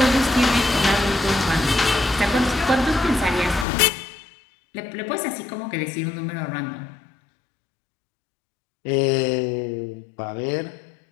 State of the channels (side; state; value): right; drops out; at 3.7 s